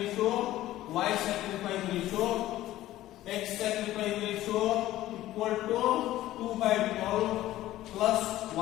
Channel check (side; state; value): right; quieter; 14.9 dB